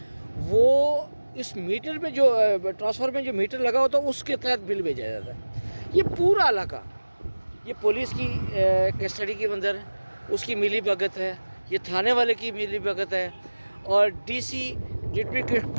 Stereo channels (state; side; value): inverted; both; correlation -1.00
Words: वो इस मीटर में जो ट्रांसफार्मर में जो मीटर लगा होता है उसके तहत बिल भेजा जाता है। ये पूरा इलाका, ये पुलिस की कस्टडी के अंदर उसकी मिली भगत है, ये थाने वाले की मिली भगत है, और डीसी डिप्टी